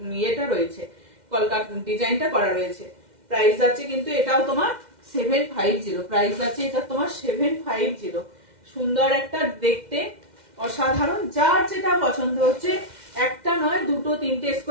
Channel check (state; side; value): late; left; 2.1 ms